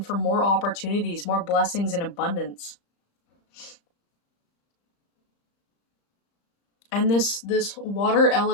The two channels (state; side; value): late; right; 35 ms